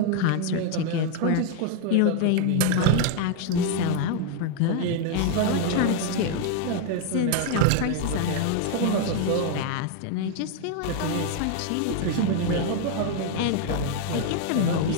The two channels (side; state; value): both; different; correlation 0.00